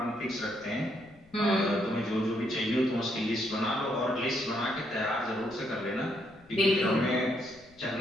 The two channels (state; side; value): noise; left; rumble, 27 dB below the sound